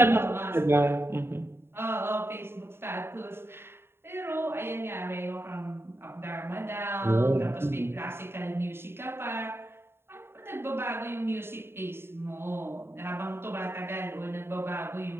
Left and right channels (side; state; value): left; late; 0.11 ms